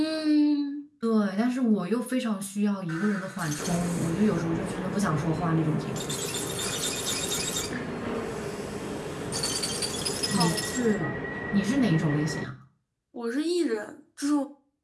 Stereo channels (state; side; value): identical; both; correlation 1.00